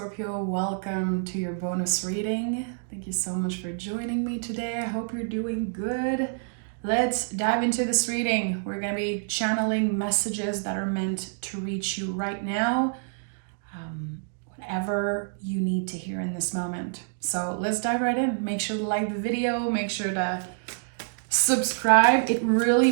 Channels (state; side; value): silent; left; digital silence